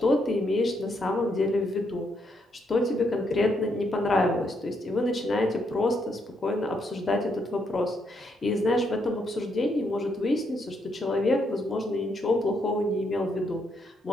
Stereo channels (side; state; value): both; normal; correlation 0.76